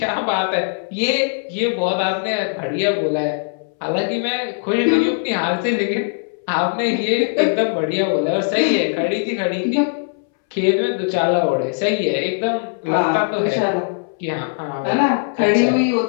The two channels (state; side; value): silent; right; 66 dB below the other